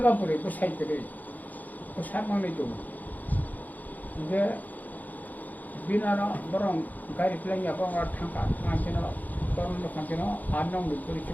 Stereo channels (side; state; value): right; late; 0.081 ms